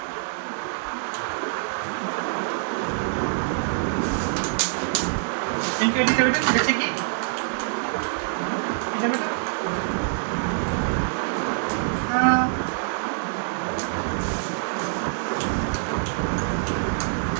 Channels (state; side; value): silent; left; digital silence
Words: ఇంట్లో పెట్టు, దశకి ఇట్లా పెట్టు.